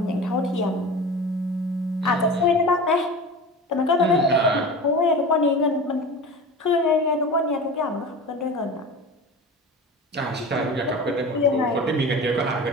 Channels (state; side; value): normal; both; correlation 0.33